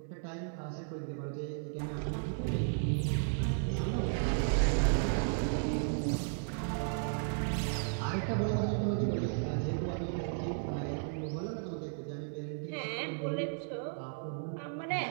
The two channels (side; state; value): left; silent; digital silence